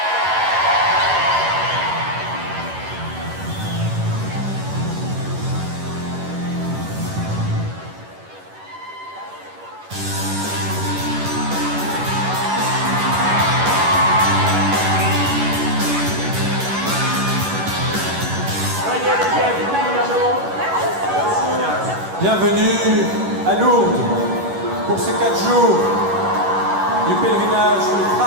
Bienvenue à Lourdes pour ces 4 jours du pèlerinage du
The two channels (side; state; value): left; late; 11 ms